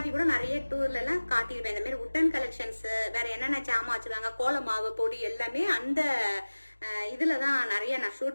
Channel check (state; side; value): inverted; both; correlation -1.00